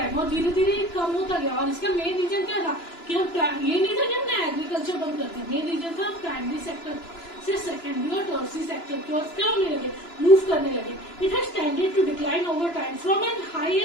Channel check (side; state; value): right; late; 2.9 ms